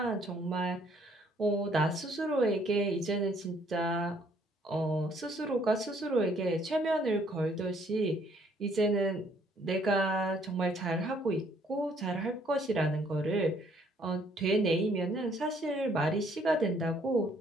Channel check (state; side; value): normal; both; correlation 0.64